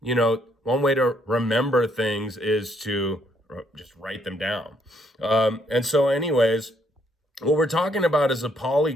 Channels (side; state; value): both; normal; correlation 0.70